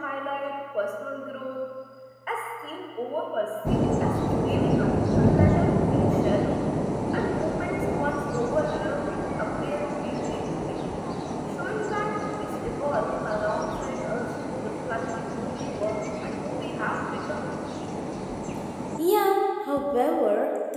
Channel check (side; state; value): both; identical; correlation 1.00